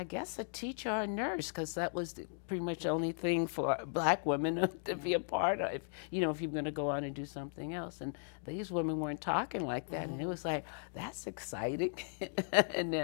guess a teacher or a nurse, because that was pretty much the only thing for black women to be a part of, you know, if you're going to go on and do something else. And these women weren't talking like that. And it was like, that's exciting. And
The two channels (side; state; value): right; silent; digital silence